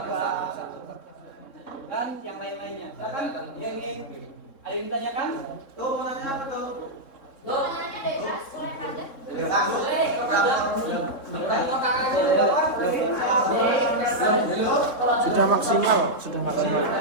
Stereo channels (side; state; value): right; late; 3.7 ms